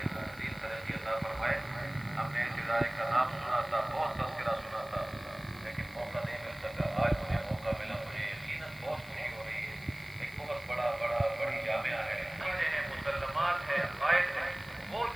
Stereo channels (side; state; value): left; noise; hiss, 21 dB below the sound